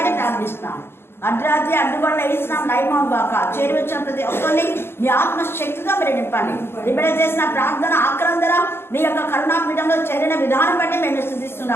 ప్రార్థిస్తున్నాను. అర్ధరాత్రి అడ్డుగొండ వేసినాం లైమం బాక చేరి వచ్చిన ప్రతి ఒక్కరిని మీ ఆత్మశక్తిగా మీరు నింపండి. ఇప్పుడు చేసిన ప్రార్థన ఆక్రందన మీ యొక్క కరుణాపీఠంలో చేరిన విధానం బట్టి మేము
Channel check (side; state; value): right; late; 0.11 ms